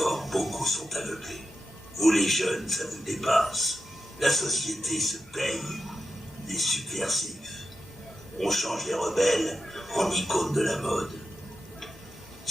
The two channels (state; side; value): normal; both; correlation 0.90